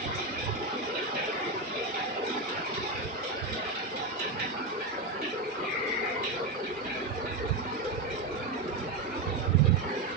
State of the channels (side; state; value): left; quieter; 3.2 dB